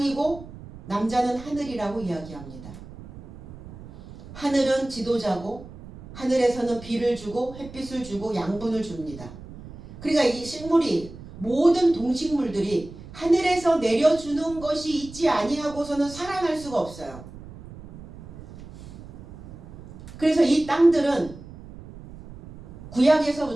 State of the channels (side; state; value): right; noise; rumble, 16 dB below the sound